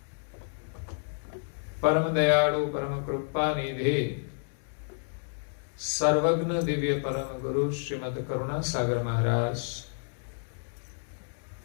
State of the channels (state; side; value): silent; right; digital silence